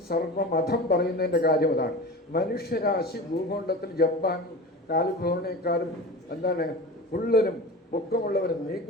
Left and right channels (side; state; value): both; normal; correlation 0.32